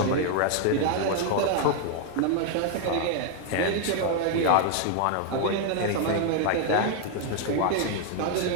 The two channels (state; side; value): different; both; correlation 0.00